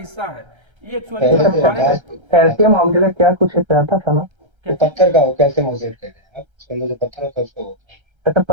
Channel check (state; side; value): late; left; 1.3 ms